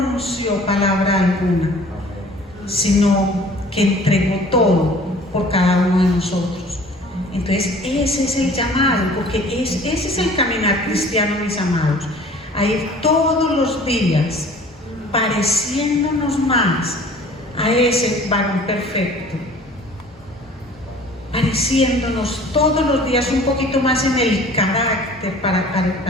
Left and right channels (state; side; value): normal; both; correlation 0.49